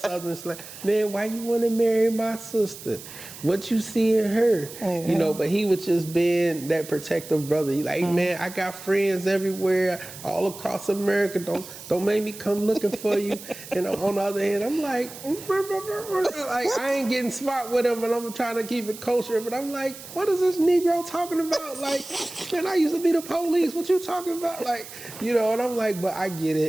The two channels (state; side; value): noise; right; hiss, 14 dB below the sound